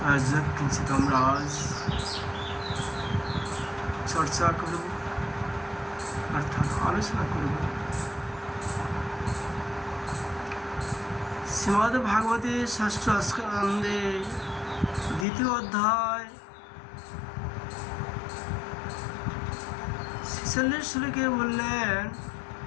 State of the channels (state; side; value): drops out; right; at 15.2 s